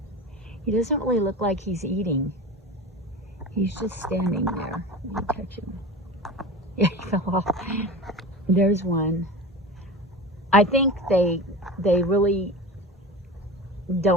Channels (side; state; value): both; normal; correlation 0.31